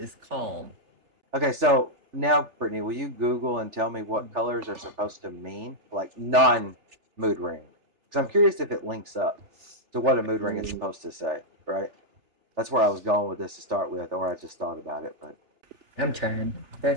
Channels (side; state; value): left; late; 3.4 ms